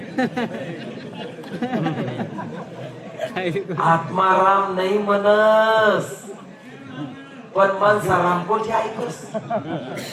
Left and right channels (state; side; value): identical; both; correlation 1.00